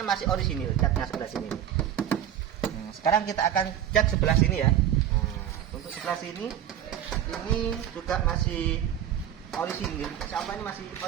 masih orisinil, catnya sebelah sini. Nah, sekarang kita akan cek sebelah sini ya. Nah, untuk sebelah sini ini juga masih orisinil. Insya Allah ini masih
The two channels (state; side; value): quieter; left; 10.5 dB